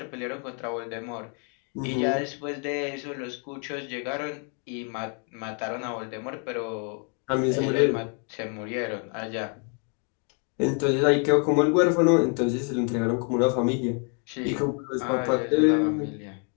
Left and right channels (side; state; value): right; quieter; 38.9 dB